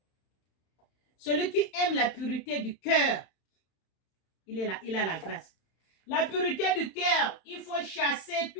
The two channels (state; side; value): late; right; 31 ms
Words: Celui qui aime la pureté du cœur, il a la grâce. La pureté du cœur, il faut chasser